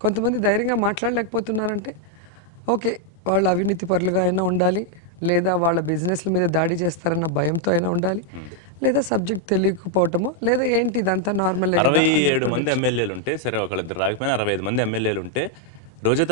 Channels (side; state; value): both; normal; correlation 0.00